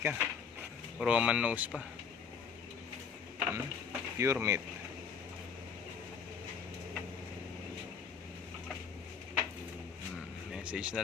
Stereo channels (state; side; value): quieter; right; 6.3 dB